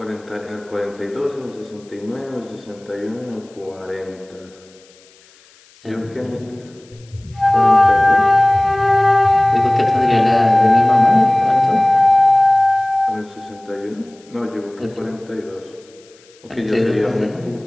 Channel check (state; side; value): noise; left; hiss, 29 dB below the sound